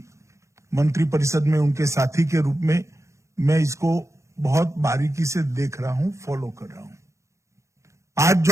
मंत्रिपरिषद में उनके साथी के रूप में मैं इसको बहुत बारीकी से देख रहा हूं, फॉलो कर रहा हूं। आज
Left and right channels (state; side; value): late; left; 0.14 ms